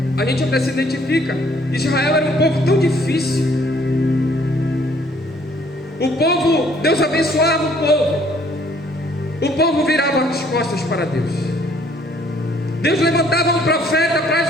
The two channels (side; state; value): both; normal; correlation 0.61